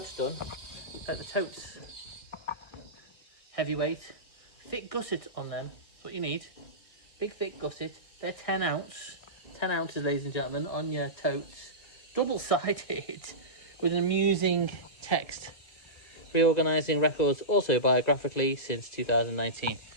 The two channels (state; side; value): late; right; 2.3 ms